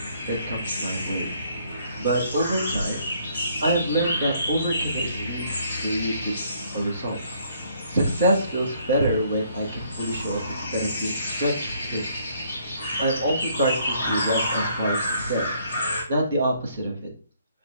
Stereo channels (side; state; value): both; inverted; correlation -0.66